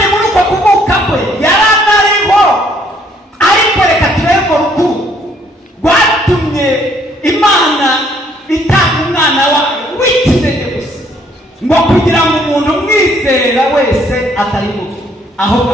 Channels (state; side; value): normal; both; correlation 0.65